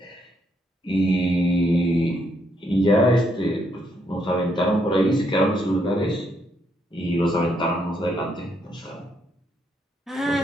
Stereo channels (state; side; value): normal; both; correlation 0.75